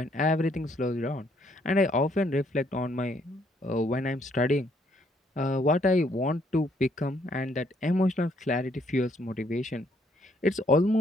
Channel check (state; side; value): normal; both; correlation 0.69